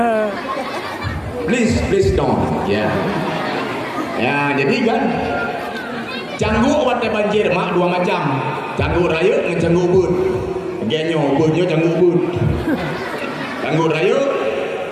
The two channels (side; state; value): both; identical; correlation 1.00